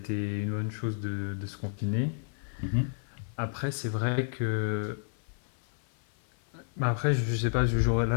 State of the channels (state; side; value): silent; right; 56 dB below the other